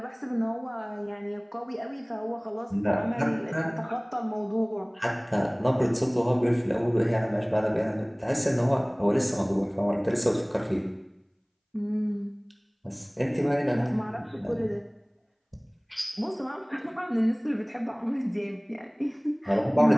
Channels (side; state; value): both; identical; correlation 1.00